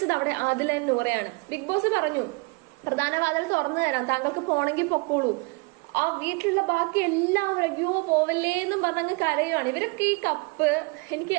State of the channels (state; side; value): quieter; left; 28.4 dB